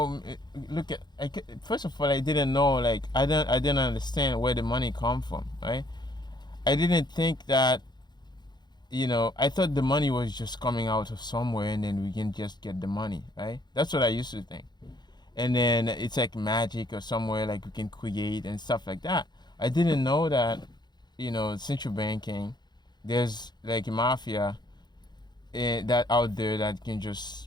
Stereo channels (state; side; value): late; right; 0.21 ms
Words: first of all, I didn't know, like, I didn't understand where the money come from, right? I didn't think that, I thought the money was just coming out of somewhere and then we can just get the money, right? That's what I used to think. And then it's like magic or somewhere like we can create and stuff like that. I didn't know that, central banking, there's like a mafia that out there that can